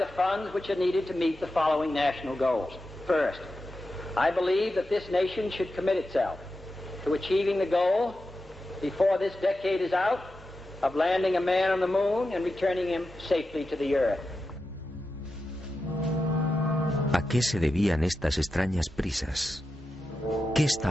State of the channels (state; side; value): normal; both; correlation 0.90